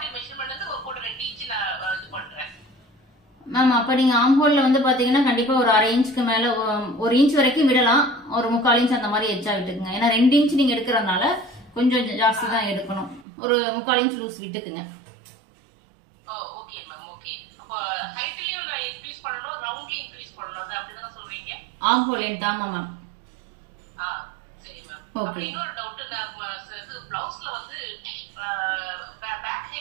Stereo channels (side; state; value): left; drops out; at 13.2 s